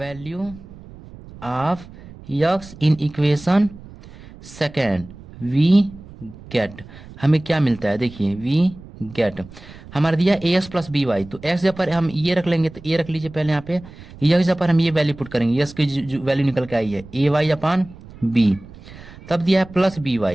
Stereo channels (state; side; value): noise; right; rumble, 18 dB below the sound